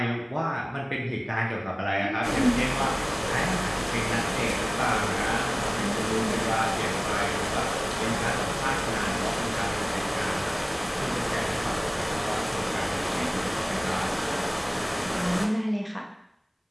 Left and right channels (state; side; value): identical; both; correlation 1.00